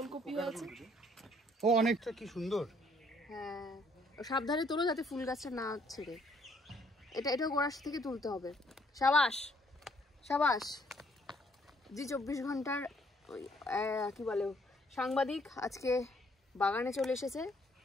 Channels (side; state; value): both; normal; correlation 0.65